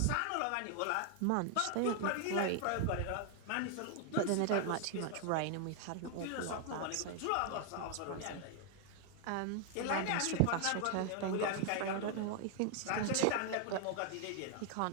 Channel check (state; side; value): different; both; correlation 0.00